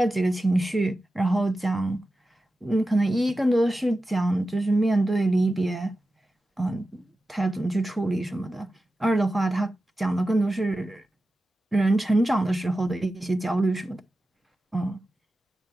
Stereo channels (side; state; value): both; normal; correlation 0.93